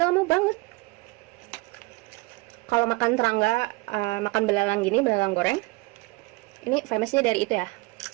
lama banget. Kalau makan serangga, makan belalang gini, belalang goreng, ini famousnya dari itu ya,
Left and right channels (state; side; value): quieter; left; 24.1 dB